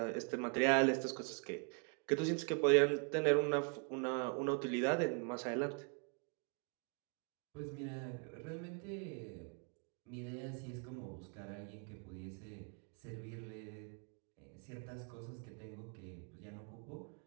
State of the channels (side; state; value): left; quieter; 39.9 dB